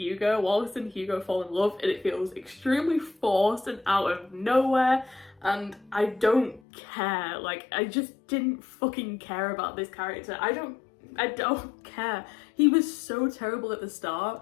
Wallace and Hugo fall in love and it feels extremely forced and out of nowhere. And I don't care. Like, I just didn't fucking care about this character. I don't care. He was so terrible at the start,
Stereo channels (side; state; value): right; drops out; at 6.6 s